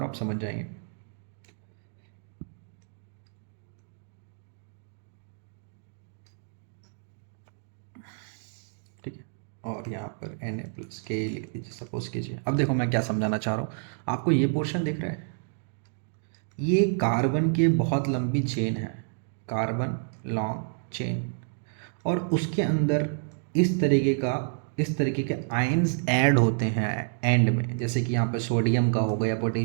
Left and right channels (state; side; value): silent; left; digital silence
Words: हूँ, आप समझ जाएंगे। ठीक है, और यहाँ पर Na+K लिख दीजिए, सपोज कीजिए। अब देखो मैं क्या समझाना चाह रहा हूँ आपको। ये पोर्शन दिख रहा है, ये कार्बन की बहुत लंबी चेन है। कार्बन लॉन्ग चेन, और उसके अंदर इस तरीके के आयंस ऐड होते हैं एंड में, जैसे कि यहाँ पे सोडियम का होगा या